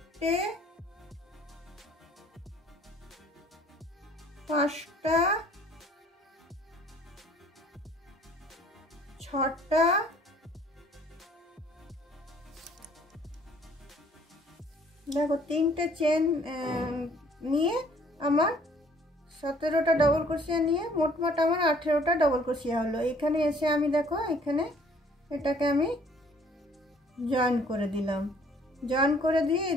পাঁচটা, ছটা, দেখো তিনটে চেন নিয়ে আমার 17টা ডবল ক্রোশিয়া নিয়ে মোটমাট আমার 18টা ডবল ক্রোশিয়া হলো। এখানে এসে আমি দেখো এখানে এটাকে আমি জয়েন করে দিলাম। জয়েন করে দিয়ে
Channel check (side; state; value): both; normal; correlation 0.58